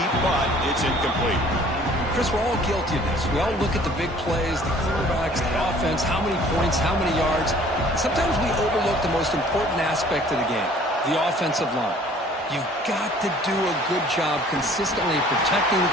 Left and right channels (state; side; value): normal; both; correlation 0.53